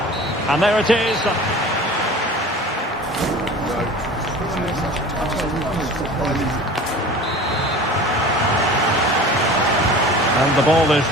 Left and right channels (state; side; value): normal; both; correlation 0.40